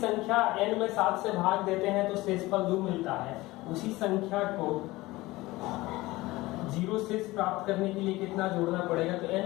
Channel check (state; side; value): quieter; right; 19.7 dB